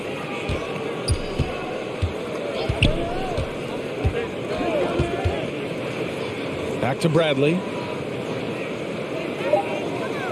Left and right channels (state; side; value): identical; both; correlation 1.00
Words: Back to Bradley.